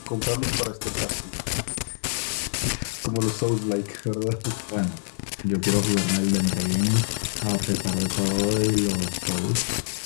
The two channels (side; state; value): right; silent; 61 dB below the other